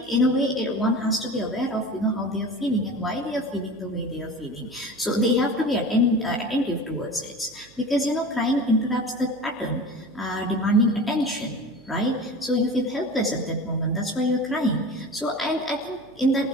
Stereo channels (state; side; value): noise; right; hum, 26 dB below the sound